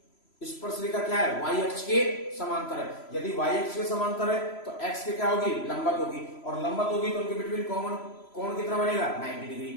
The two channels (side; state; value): right; late; 3.0 ms